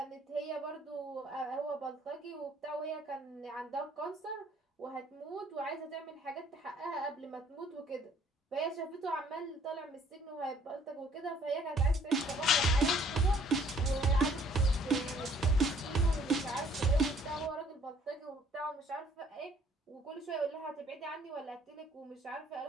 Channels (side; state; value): both; normal; correlation 0.59